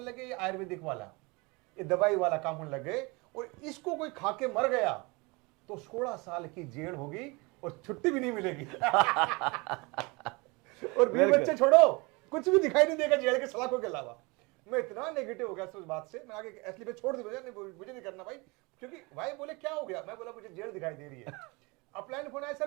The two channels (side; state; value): left; quieter; 26.8 dB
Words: लगे ये आयुर्वेदिक वाला, ये दवाई वाला काम होने लग गए, और इसको कोई खा के मर गया तो 16 साल की जेल होगी और छुट्टी भी नहीं मिलेगी। और 20 बच्चे छोड़ो, कुछ भी दिखाई नहीं देगा जेल के सलाखों के अलावा। मैं इतना नेगेटिव हो गया उस बात से, मैं आगे एस्क्लेपियस छोड़ दी, मुझे नहीं करना भाई, क्योंकि भाई बोले क्या हो गया, मैं बोला मुझे जेल दिखाई दे रही है। अपलाइन फोन आया,